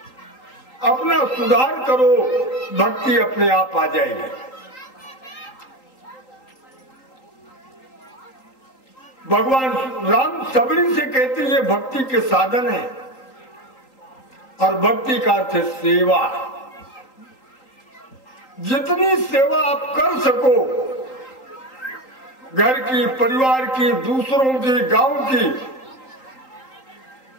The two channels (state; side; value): late; right; 3.8 ms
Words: अपना सुधार करो, भक्ति अपने आप आ जाएगी। भगवान राम सबरी से कहते ये भक्ति के साधन है। और भक्ति का अर्थ है सेवा। जितनी सेवा आप कर सको, घर की, परिवार की, दूसरों की, गांव की,